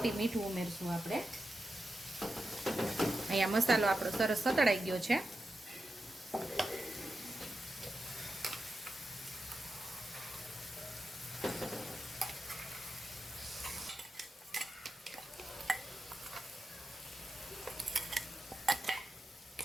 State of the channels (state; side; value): normal; both; correlation 0.89